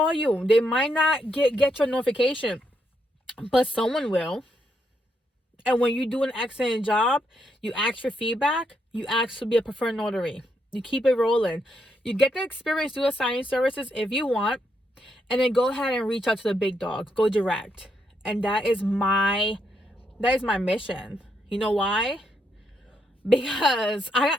you. They might not get your notification, but someone will. And when you do an excellent job, you ask for feedback, you ask to be a preferred notary. You keep it rolling. You get the experience through the signing services if you want, and then go ahead and reach out to the big dogs. Go direct. And that is my mission. You know why? Because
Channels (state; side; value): normal; both; correlation 0.78